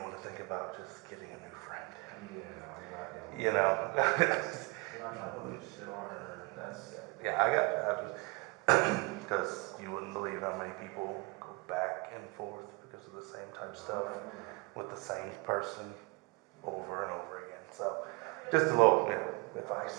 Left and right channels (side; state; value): left; quieter; 26.6 dB